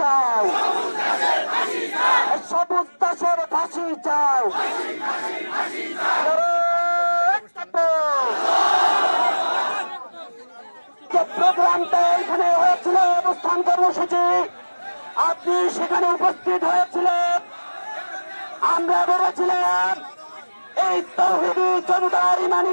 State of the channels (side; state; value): both; inverted; correlation -1.00